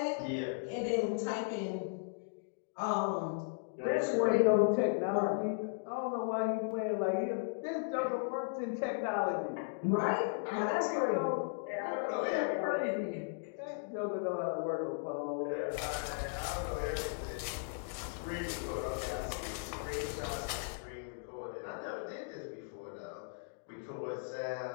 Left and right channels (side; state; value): right; silent; digital silence